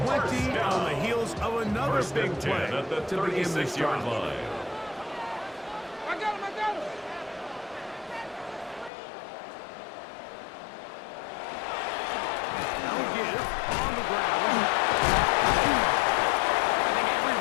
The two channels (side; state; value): right; drops out; at 8.9 s